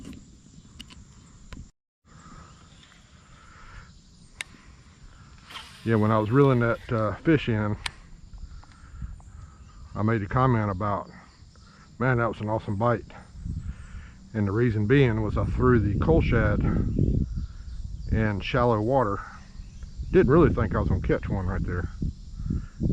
Yeah, when I was reeling that fish in, I made a comment about, man, that was an awesome bite. And the reason being was I threw the cullshad in shallow water. Didn't really think I was going to catch one right there.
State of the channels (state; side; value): identical; both; correlation 1.00